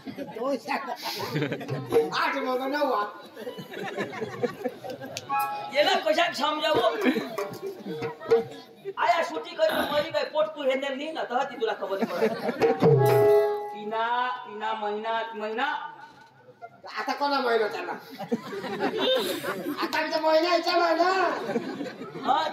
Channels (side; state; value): both; identical; correlation 1.00